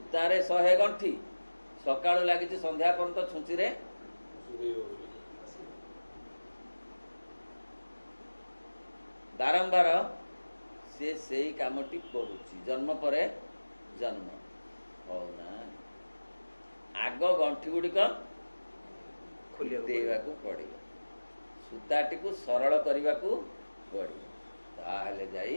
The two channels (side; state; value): both; inverted; correlation -1.00